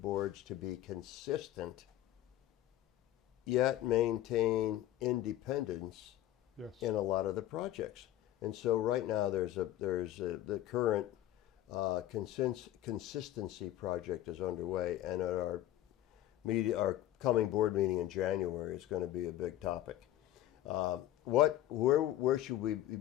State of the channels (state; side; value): quieter; right; 13.4 dB